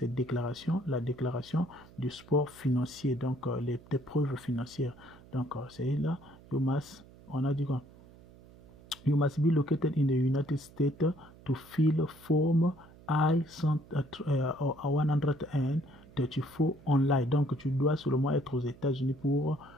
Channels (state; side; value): noise; right; hum, 22 dB below the sound